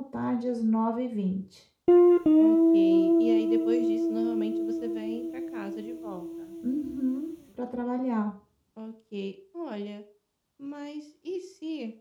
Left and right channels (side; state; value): both; identical; correlation 1.00